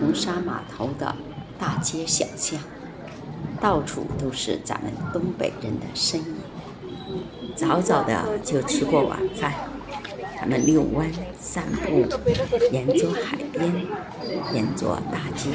沙码头的大街小巷，到处都是咱们东北人的身影。早早的就吃过晚饭，他们遛弯、散步，沿着海边，沿着大街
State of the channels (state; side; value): identical; both; correlation 1.00